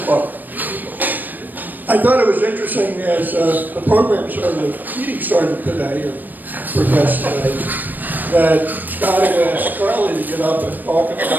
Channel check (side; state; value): left; late; 0.088 ms